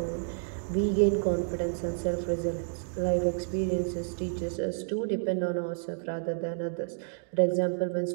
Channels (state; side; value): silent; left; digital silence